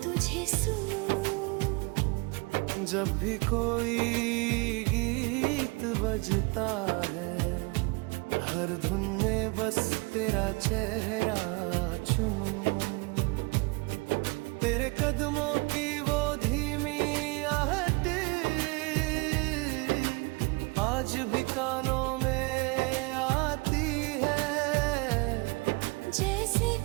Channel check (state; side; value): quieter; left; 27.6 dB